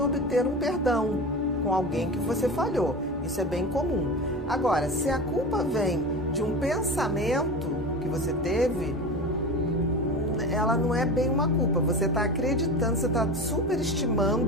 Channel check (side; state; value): both; normal; correlation 0.29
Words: obter um perdão com alguém que você falhou. Isso é bem comum. Agora, se a culpa vem de um pensamento que você teve, ela não é bem uma culpa. Você está acreditando, você está